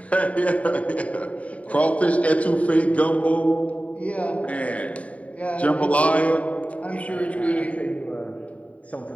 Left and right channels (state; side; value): late; right; 0.067 ms